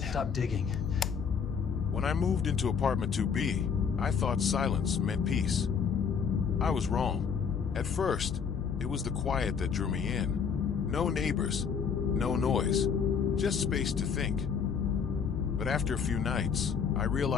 stopped digging. When I moved into apartment 2B, I thought silence meant peace. I was wrong. At first, it was the quiet that drew me in. No neighbors, no noise, just space to think. But after a few nights, I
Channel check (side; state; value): right; quieter; 6.6 dB